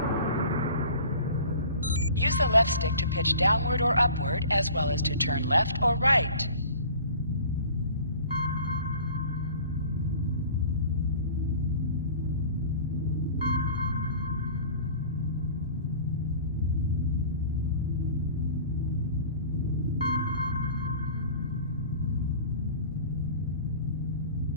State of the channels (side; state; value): both; inverted; correlation -0.44